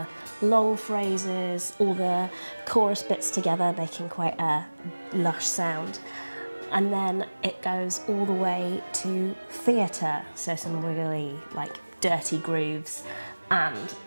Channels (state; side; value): inverted; both; correlation -1.00